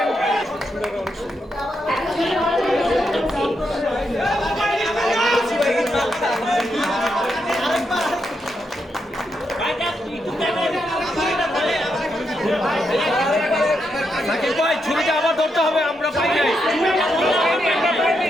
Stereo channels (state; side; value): normal; both; correlation 0.82